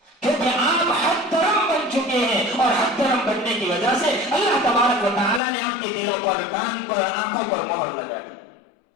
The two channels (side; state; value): right; drops out; at 5.4 s